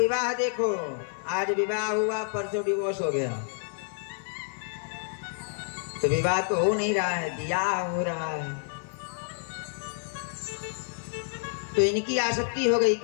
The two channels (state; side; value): silent; right; 55 dB below the other